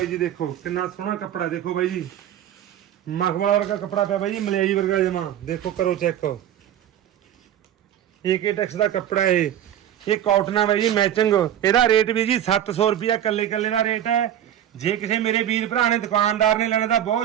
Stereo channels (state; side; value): quieter; left; 11.0 dB